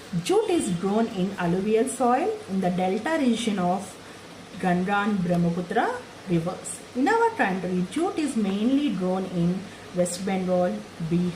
Jute is grown in alluvial soil in the delta region of Ganga and Brahmaputra rivers. In our country, jute is mainly grown in West Bengal,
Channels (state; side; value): identical; both; correlation 1.00